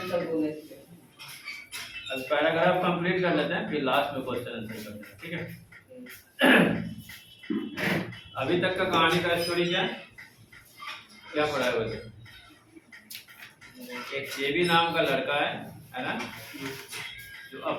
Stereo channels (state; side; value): identical; both; correlation 1.00